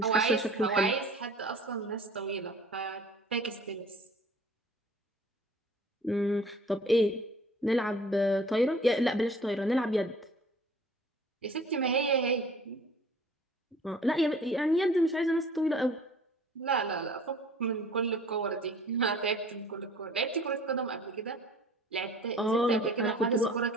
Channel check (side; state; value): both; normal; correlation 0.49